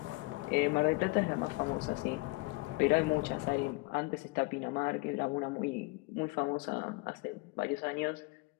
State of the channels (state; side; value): quieter; right; 24.8 dB